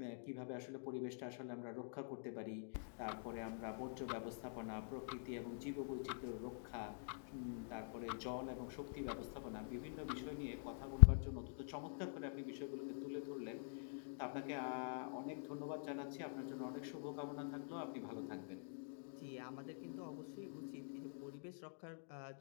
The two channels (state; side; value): silent; right; digital silence